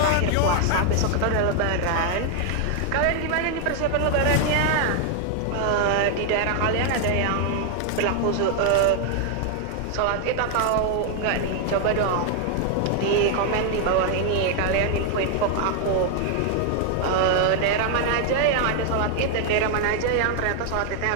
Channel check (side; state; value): both; different; correlation 0.00